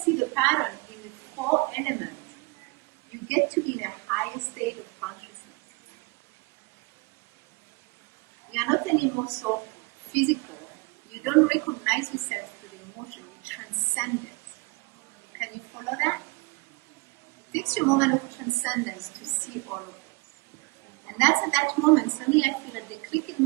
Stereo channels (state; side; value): quieter; left; 27.1 dB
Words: the pattern in the four elements, you get to be in a higher state of consciousness. You are not anymore so physical. You don't recognize yourself through the emotion. You transcend it. Can you follow that? It takes you a moment of transcendence to see all of this. And that's at that moment, suddenly I feel at the click in